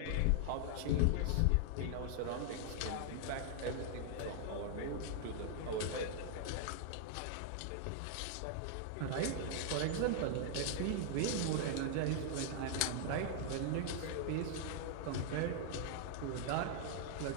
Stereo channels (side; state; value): both; different; correlation 0.00